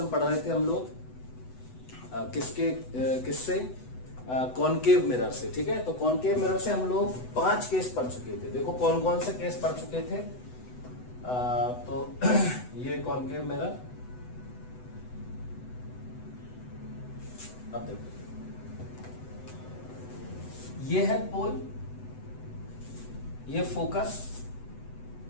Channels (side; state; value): right; late; 8.0 ms